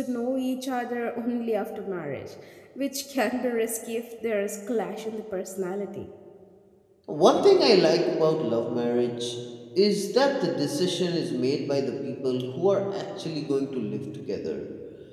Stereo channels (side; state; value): both; identical; correlation 1.00